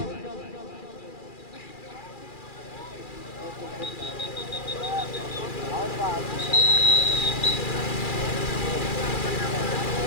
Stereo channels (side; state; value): right; late; 2.4 ms